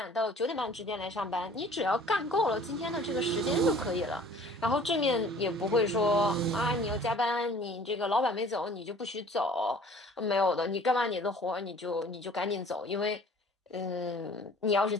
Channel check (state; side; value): normal; both; correlation 0.50